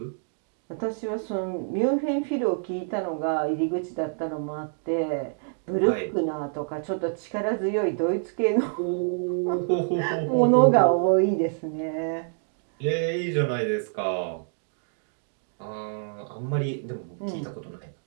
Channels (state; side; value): silent; left; digital silence